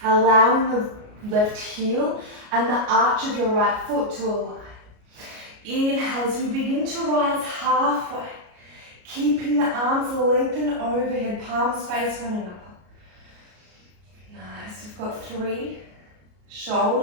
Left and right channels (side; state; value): left; late; 33 ms